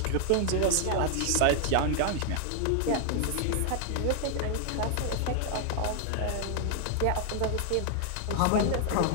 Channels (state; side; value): different; both; correlation 0.00